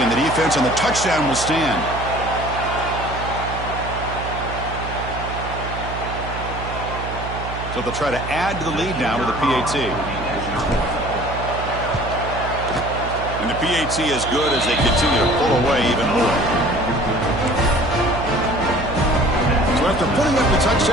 on the defense, and the touchdown will stand. So they'll try to add to the lead now with the PAT. And the PAT is good as they continue to pull away even more. So after putting up the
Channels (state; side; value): noise; right; hum, 8 dB below the sound